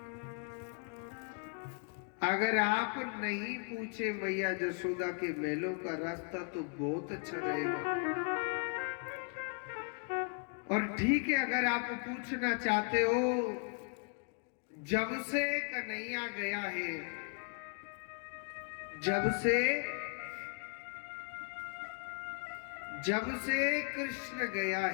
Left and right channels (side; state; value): right; quieter; 39.6 dB